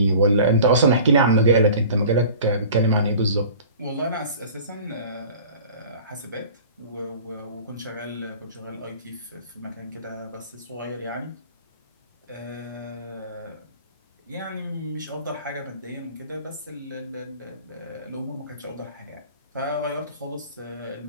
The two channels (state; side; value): inverted; both; correlation -0.43